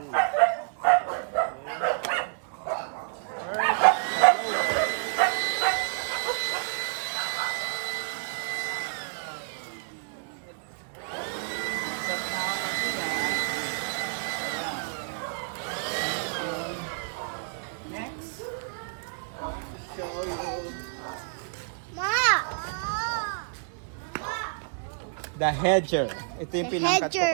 The hedger. Ito yung pinangkat ko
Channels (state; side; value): silent; left; digital silence